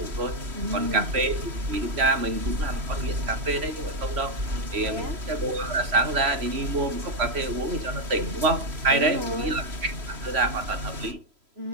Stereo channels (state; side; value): late; left; 3.0 ms